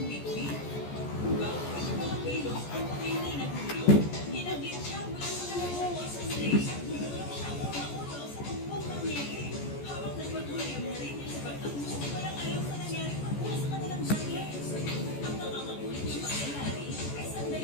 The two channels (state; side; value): late; right; 14 ms